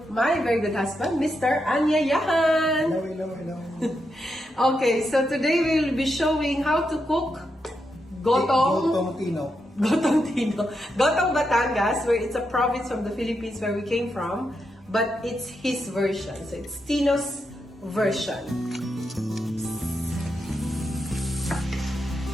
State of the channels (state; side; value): normal; both; correlation 0.84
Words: my very good husband, Mr. Anyayahan. Hello. Okay, so today we'll be showing how to cook Gotong Batangas, where it's a province from the Philippines where we came from, but it's his version. So it's Tino's version.